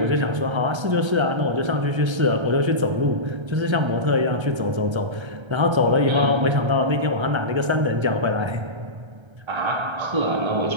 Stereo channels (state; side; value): late; left; 1.3 ms